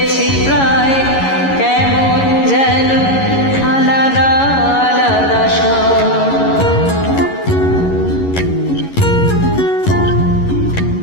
প্রায়, কেমন যেন আলাদা আলাদা সব।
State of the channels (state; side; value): late; right; 11 ms